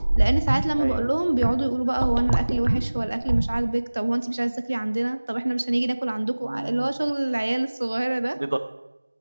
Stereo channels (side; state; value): both; inverted; correlation -1.00